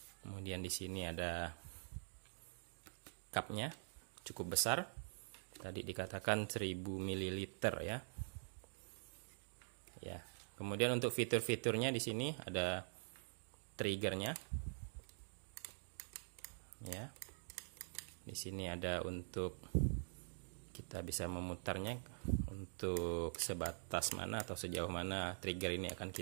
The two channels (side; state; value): left; silent; digital silence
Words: Kemudian di sini ada cupnya, cukup besar. Tadi dikatakan 1000 ml ya. Ya. Kemudian untuk fitur-fiturnya di sini ada triggernya. Ya. Di sini ada untuk kita bisa memutarnya untuk sebatas mana atau sejauh mana trigger ini akan